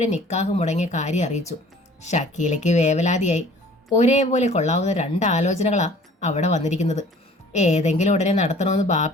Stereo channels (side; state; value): both; normal; correlation 0.51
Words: നിക്കാഹ് മുടങ്ങിയ കാര്യം അറിയിച്ചു. ഷക്കീലയ്ക്ക് വേവലാതിയായി. ഒരേപോലെ കൊള്ളാവുന്ന 2 ആലോചനകളാ അവിടെ വന്നിരിക്കുന്നത്. ഏതെങ്കിലും ഉടനെ നടത്തണമെന്ന്